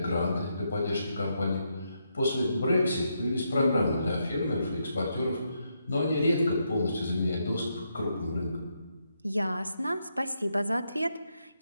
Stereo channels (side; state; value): both; inverted; correlation -0.80